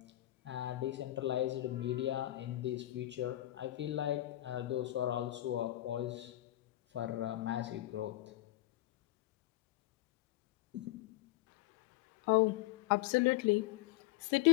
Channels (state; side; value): quieter; right; 15.9 dB